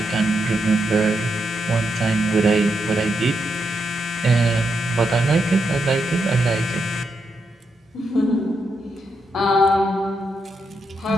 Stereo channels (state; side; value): normal; both; correlation 0.82